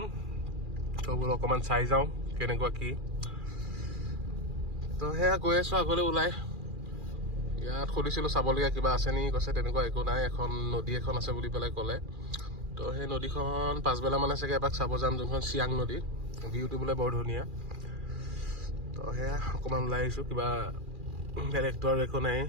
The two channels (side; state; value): left; late; 2.4 ms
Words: তো বোলো অকণমান চাই যাওঁ কেনেকুৱা কি। তো সেয়া গৈ আছোঁ আগলৈ ওলাই। ইয়াত সুধিছিলোঁ চাবলগীয়া কিবা আছে নেকি, কৈছে তেনেকুৱা একো নাই, এখন নদী এখন আছে বুলি পেলাই ক'লে। তো সেই নদীখন পাছবেলা মানে চাগে এপাক চাব যাম, যোনখন চিয়াং নদী, ভিউটো বোলে বৰ ধুনীয়া। তো সেয়া অকণমান ওলাই আহিছোঁ, কিবা বেলেগটো আৰু একো নাই।